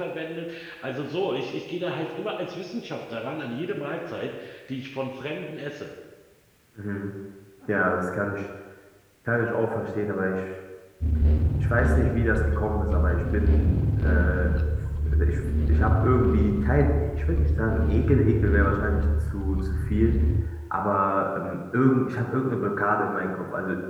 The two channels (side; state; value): both; identical; correlation 1.00